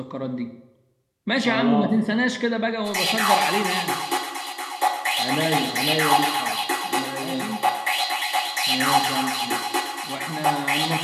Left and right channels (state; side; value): identical; both; correlation 1.00